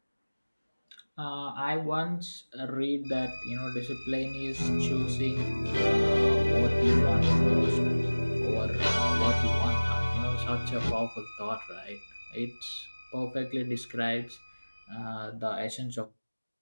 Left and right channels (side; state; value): both; inverted; correlation -1.00